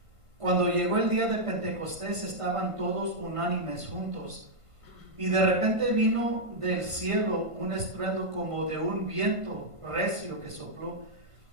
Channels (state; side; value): late; left; 1.5 ms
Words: cuando llegó el día de Pentecostés estaban todos unánimes juntos, y de repente vino del cielo un estruendo como de un viento recio que sopló,